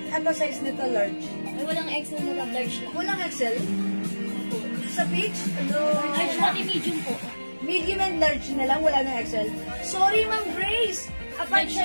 Ito size nito, large. Ay, walang XL na lang, large lang. Walang XL. Sa Peach, Large pati medium po. medium and large na lang, wala ng XL. Sorry, Ma'am Grace. Upon Large lang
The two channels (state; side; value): inverted; both; correlation -1.00